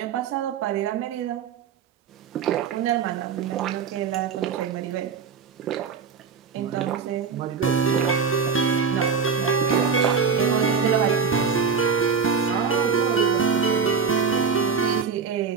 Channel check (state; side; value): quieter; left; 5.9 dB